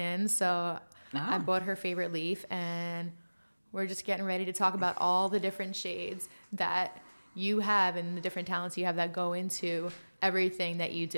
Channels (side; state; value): both; inverted; correlation -1.00